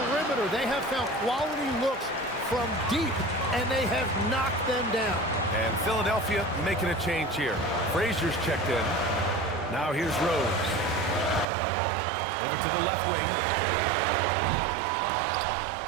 They have found quality looks from deep, and they have knocked them down. And Philadelphia making a change here. Frazier's checked in. Now here's Rose. Over to the left wing.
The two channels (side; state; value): left; drops out; at 11.5 s